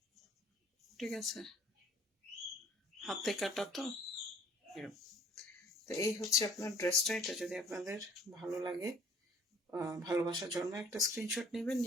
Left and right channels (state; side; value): normal; both; correlation 0.54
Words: ঠিক আছে, হাতে কাটা তো এরকম। তো এই হচ্ছে আপনার ড্রেসটা। এটা যদি আপনাদের ভালো লাগে, ভালোবাসা জন্মে একটা স্ক্রিনশট নেবেন,